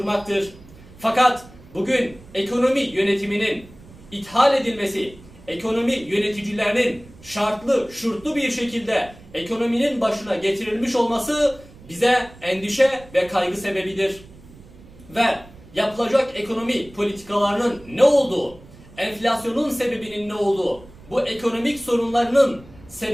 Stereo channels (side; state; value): right; noise; rumble, 22 dB below the sound